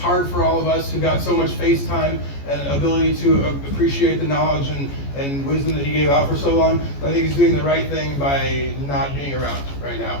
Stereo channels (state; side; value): late; right; 14 ms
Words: for all of us who got so much face time and ability to appreciate the knowledge and wisdom that he gave out for so long. I think he's doing the right thing by not being around right